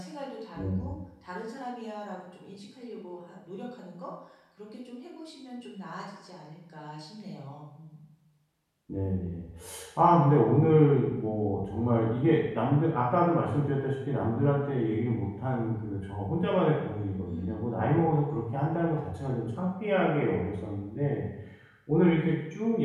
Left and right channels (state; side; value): identical; both; correlation 1.00